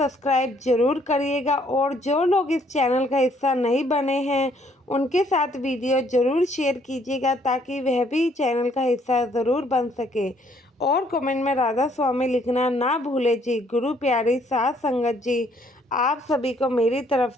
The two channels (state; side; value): normal; both; correlation 0.65